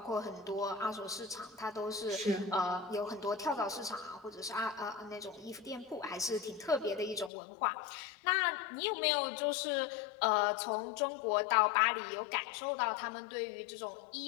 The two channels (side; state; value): right; drops out; at 7.3 s